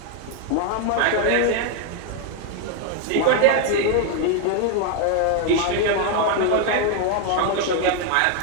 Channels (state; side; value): different; both; correlation 0.01